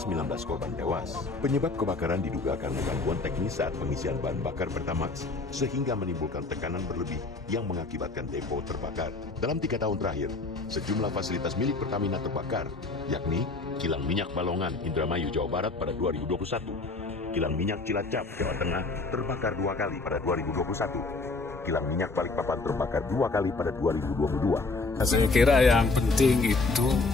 korban tewas. Penyebab kebakaran diduga karena gangguan teknis saat pengisian bahan bakar Pertamax, sehingga menimbulkan tekanan berlebih yang mengakibatkan depo terbakar. Dalam 3 tahun terakhir, sejumlah fasilitas milik Pertamina terbakar, yakni kilang minyak Balongan, Indramayu, Jawa Barat pada 2021, kilang minyak Cilacap, Jawa Tengah terbakar 2 kali pada 2021, kilang minyak Balikpapan terbakar 2 kali pada 2022. Saya kira yang penting itu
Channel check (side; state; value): right; quieter; 3.6 dB